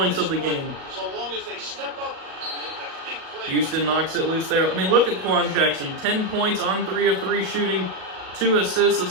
of the game. Houston knocks it loose there. I mean, look at Quan Jackson. 10 points on 3 of 3 shooting. 2 assists, a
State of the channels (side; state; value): left; late; 38 ms